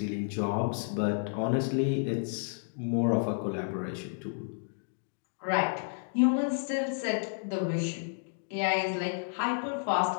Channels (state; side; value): silent; right; digital silence